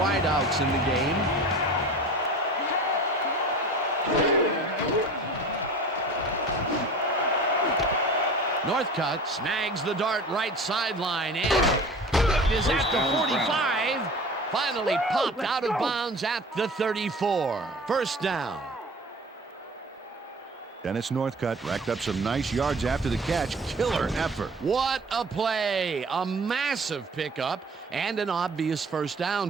in the game. Northcutt snags the dart right sideline and is at the 45. Finally popped out of bounds at the 34. First down. Dennis Northcutt racked up some nice yards after the catch. Killer effort. What a play. A massive pickup and an obvious first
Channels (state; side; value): normal; both; correlation 0.40